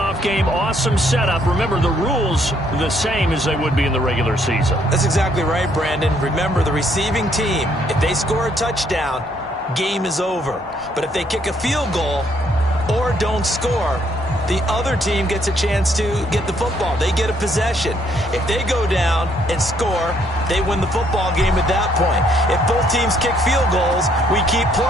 game, awesome setup. Remember, the rules are the same as they would be in the regular season. That's exactly right, Brandon. Remember, the receiving team, if they score a touchdown, game is over. But if they kick a field goal or don't score, the other team gets a chance to get the football. They get a possession. If they go down and score, they win the football game at that point. If both teams kick field goals, we keep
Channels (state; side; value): normal; both; correlation 0.68